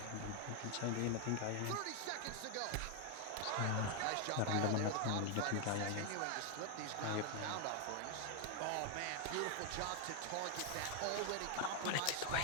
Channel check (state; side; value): different; both; correlation 0.00